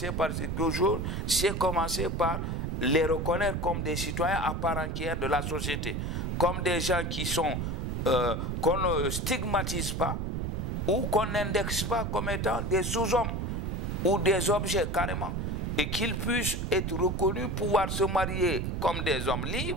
par quelque chose, c'est commencer par les reconnaître comme des citoyens à part entière de la société. Comme des gens qui sont, qu'on ne stigmatise pas ou qu'on n'indexe pas comme étant des sous-hommes ou des objets carrément. Et qu'ils puissent être reconnus, pouvoir se marier comme des hommes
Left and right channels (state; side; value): noise; right; rumble, 1 dB below the sound